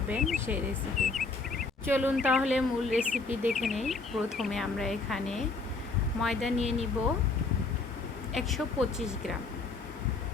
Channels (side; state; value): right; quieter; 3.9 dB